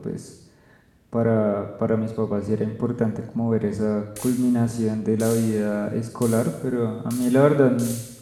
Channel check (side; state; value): both; identical; correlation 1.00